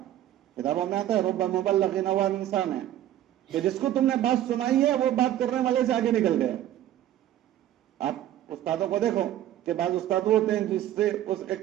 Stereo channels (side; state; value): left; quieter; 12.5 dB